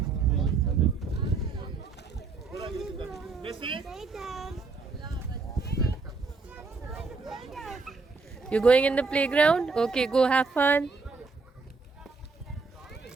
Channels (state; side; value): quieter; left; 4.3 dB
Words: Stay down. You're going in the playground? Okay, go have fun.